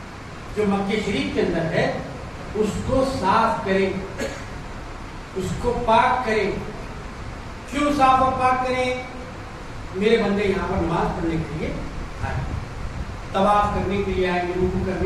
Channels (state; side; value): identical; both; correlation 1.00